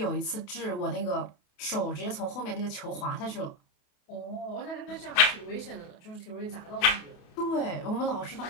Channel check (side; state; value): right; late; 28 ms